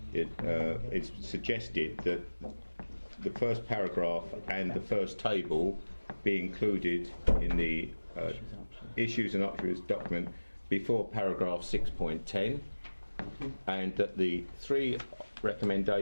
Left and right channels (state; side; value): inverted; both; correlation -1.00